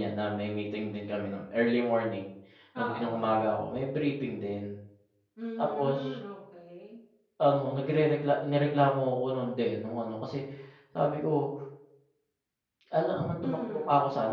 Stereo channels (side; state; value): both; identical; correlation 1.00